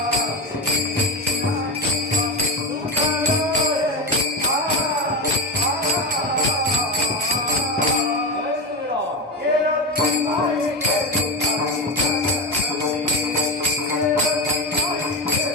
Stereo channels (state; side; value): normal; both; correlation 0.17